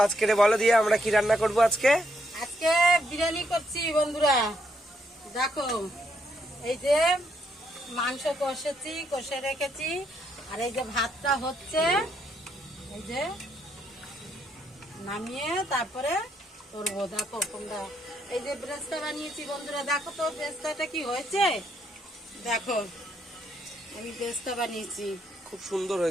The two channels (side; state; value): both; normal; correlation 0.74